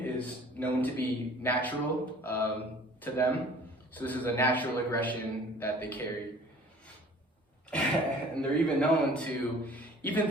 is known to be natural to them. So this is a natural aggression that they carry. And they're even known to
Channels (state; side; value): normal; both; correlation 0.50